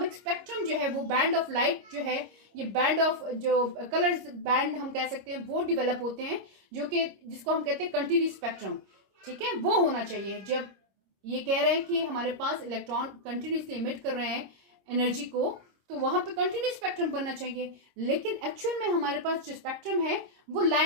स्पेक्ट्रम जो है वो बैंड ऑफ लाइट जो है, ये बैंड ऑफ जो कलर्स बैंड हम कह सकते हैं वो डेवलप होते हैं, जो कि जिसको हम कहते हैं कंटिन्यूस स्पेक्ट्रम, ठीक है, वो होना चाहिए। जब ये कह रहे हैं कि हमारे पास इलेक्ट्रॉन कंटिन्यूसली इमिट कर रहे हैं एनर्जी को, तो वहां पे कंटिन्यूस स्पेक्ट्रम बनना चाहिए। लेकिन एक्चुअल में हमारे पास जो स्पेक्ट्रम है वो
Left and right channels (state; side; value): late; left; 26 ms